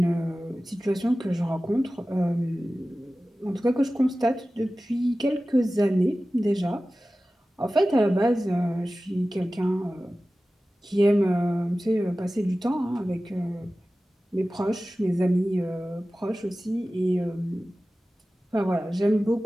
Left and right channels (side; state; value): both; normal; correlation 0.96